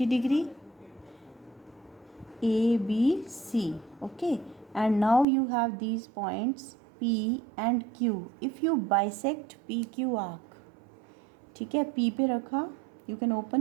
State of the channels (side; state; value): left; drops out; at 5.2 s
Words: degree. A, B, C. Okay. And now you have these points P and Q. If you bisect PQ arc, ठीक है, P पे रखा, you can